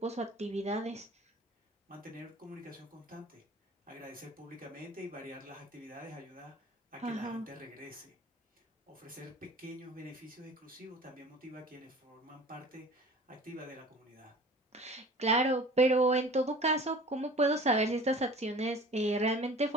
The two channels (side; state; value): both; normal; correlation 0.44